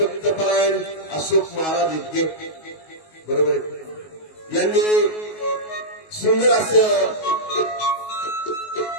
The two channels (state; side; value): late; right; 19 ms